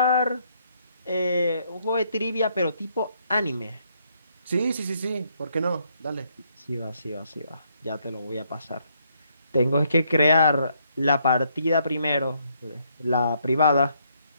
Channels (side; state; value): both; inverted; correlation -0.72